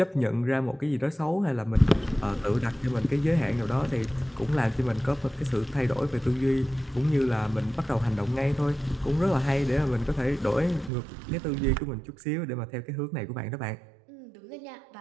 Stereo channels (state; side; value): drops out; left; at 10.9 s